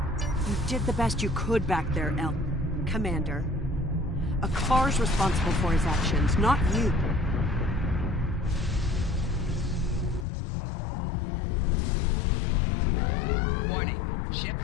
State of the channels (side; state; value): right; drops out; at 10.2 s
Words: You did the best you could back there, Commander. A car's responsible for his actions, not you. Warning, ship